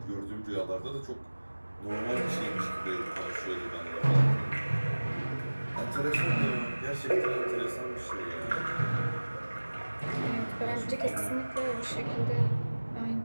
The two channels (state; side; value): inverted; both; correlation -1.00